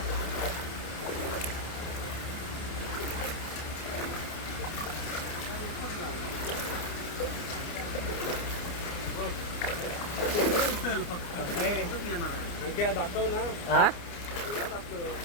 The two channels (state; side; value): late; right; 29 ms